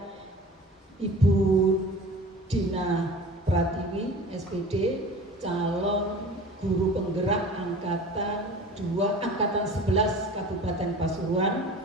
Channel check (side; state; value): both; normal; correlation 0.40